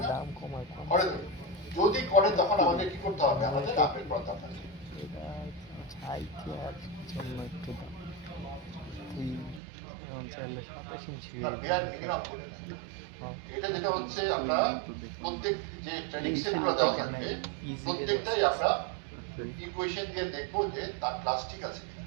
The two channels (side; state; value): left; drops out; at 9.6 s